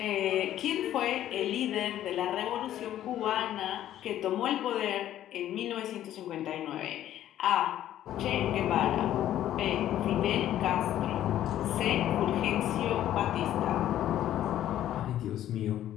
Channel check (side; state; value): right; quieter; 12.2 dB